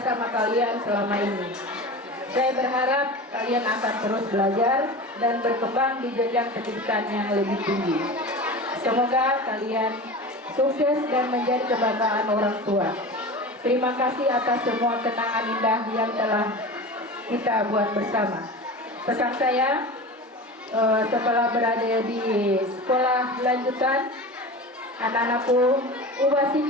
kalian selama ini. Saya berharap kalian akan terus belajar dan berkembang di jenjang pendidikan yang lebih tinggi. Semoga kalian sukses dan menjadi kebanggaan orang tua. Terima kasih atas semua kenangan indah yang telah kita buat bersama. Pesan saya, setelah berada di sekolah lanjutan, anak-anakku ubah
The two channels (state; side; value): normal; both; correlation 0.31